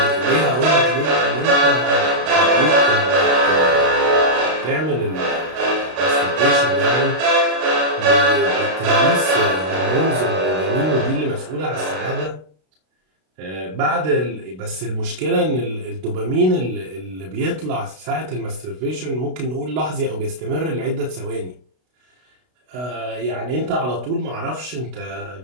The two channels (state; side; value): late; left; 32 ms